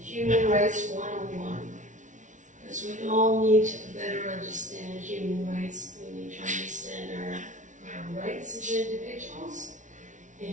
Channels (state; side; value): late; left; 0.37 ms